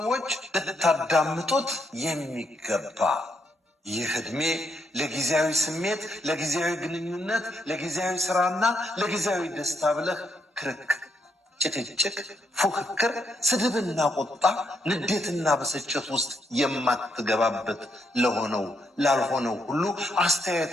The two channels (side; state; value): both; normal; correlation 0.77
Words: ልታዳምጡት የሚገባ ይህ ዕድሜ ለጊዜያዊ ስሜት፣ ለጊዜያዊ ግንኙነት፣ ለጊዜያዊ ስራና ለጊዜያዊ ደስታ ብለህ ክርክር፣ ጭቅጭቅ፣ ፉክክር፣ ስድብና ቁጣ፣ ንዴትና ብስጭት ውስጥ የማትገባበት ለሆነው ላልሆነው ሁሉ